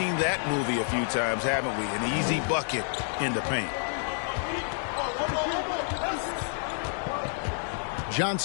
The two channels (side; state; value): right; silent; 59 dB below the other